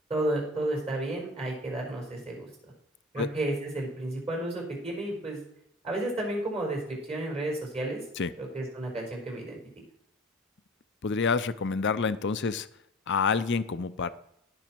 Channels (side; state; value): both; normal; correlation 0.40